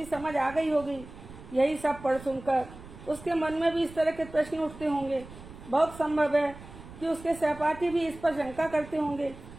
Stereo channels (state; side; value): noise; right; rumble, 17 dB below the sound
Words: समझ आ गई होगी। यही सब पढ़ सुनकर उसके मन में भी इस तरह के प्रश्न उठते होंगे। बहुत संभव है कि उसके सहपाठी भी इस पर शंका करते होंगे।